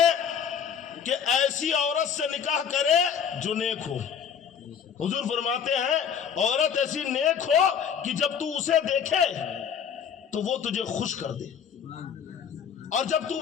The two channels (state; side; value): quieter; right; 7.6 dB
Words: کہ ایسی عورت سے نکاح کرے جو نیک ہو۔ حضور فرماتے ہیں عورت ایسی نیک ہو کہ جب تو اسے دیکھے تو وہ تجھے خوش کر دے، اور جب تو